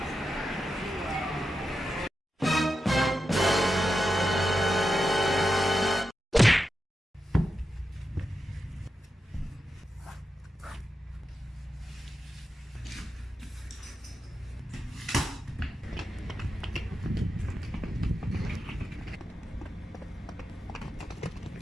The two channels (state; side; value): normal; both; correlation 0.89